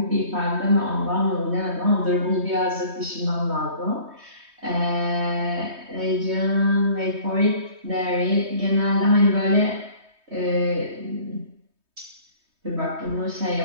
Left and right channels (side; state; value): left; late; 3.2 ms